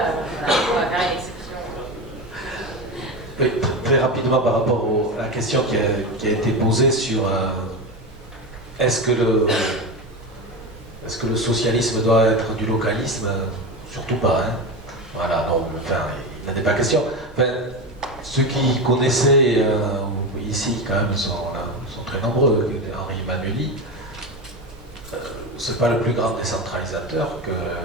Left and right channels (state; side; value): normal; both; correlation 0.20